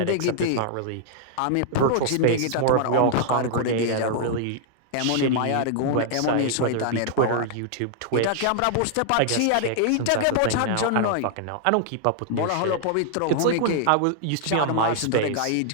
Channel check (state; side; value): different; both; correlation -0.01